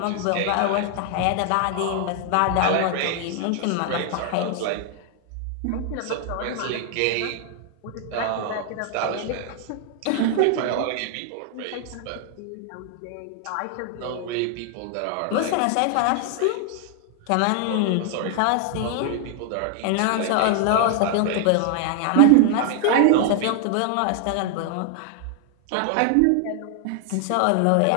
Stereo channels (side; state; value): both; different; correlation 0.00